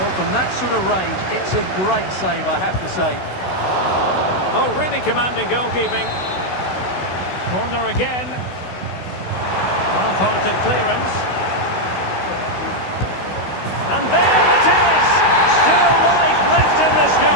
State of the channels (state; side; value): late; right; 16 ms